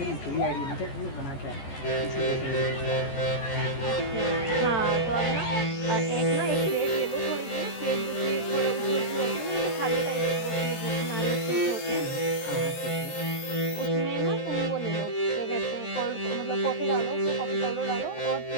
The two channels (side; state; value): right; late; 15 ms